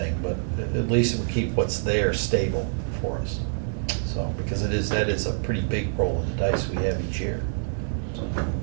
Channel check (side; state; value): left; silent; digital silence